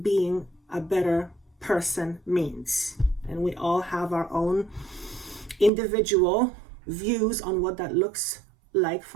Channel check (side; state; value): left; drops out; at 5.7 s